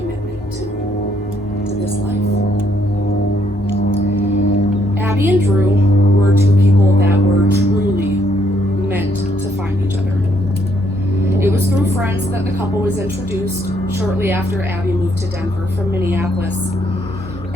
to this life. Abby and Drew were two people that were truly meant to find each other. It was through friends that the couple was introduced shortly after Abby moved to Denver from Minneapolis.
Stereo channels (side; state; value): both; normal; correlation 0.71